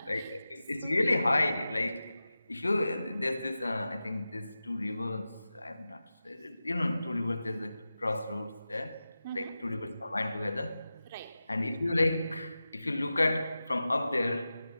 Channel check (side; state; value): both; inverted; correlation -0.94